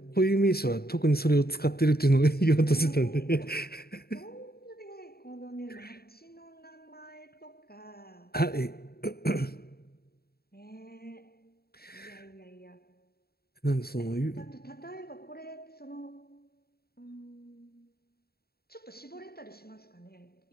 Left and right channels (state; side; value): late; right; 0.45 ms